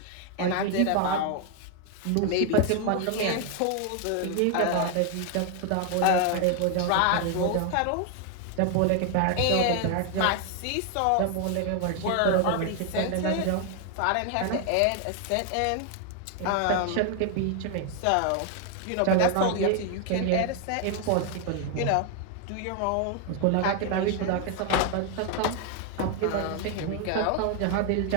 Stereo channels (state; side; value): different; both; correlation 0.00